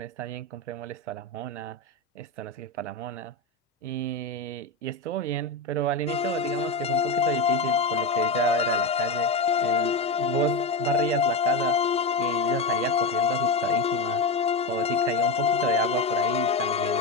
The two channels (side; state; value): right; quieter; 3.2 dB